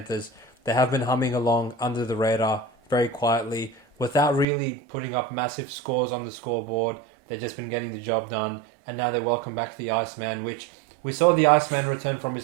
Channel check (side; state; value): left; drops out; at 4.5 s